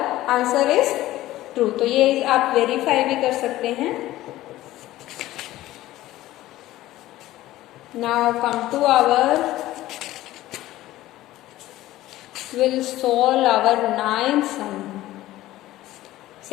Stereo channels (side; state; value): right; quieter; 15.7 dB